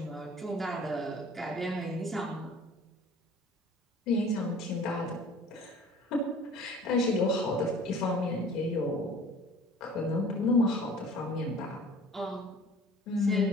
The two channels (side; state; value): both; normal; correlation 0.47